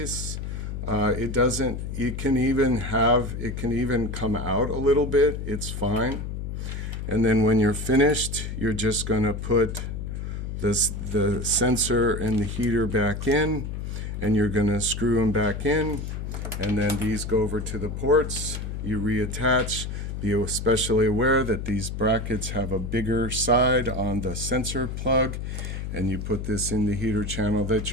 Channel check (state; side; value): noise; left; hum, 5 dB below the sound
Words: It can even come out a little bit. It's fine. And then when you're finished, you're just going to put the sensor and the heater back in, and you're going to screw them back in, and then these go over to the ports. You reattach. Be especially aware that these brackets have a bigger side on the sensor plug, and you put this in the heater channel that